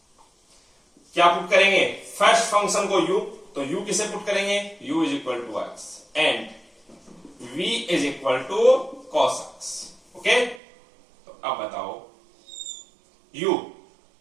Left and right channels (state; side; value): drops out; left; at 10.6 s